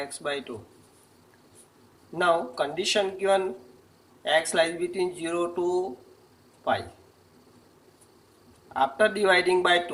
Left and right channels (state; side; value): identical; both; correlation 1.00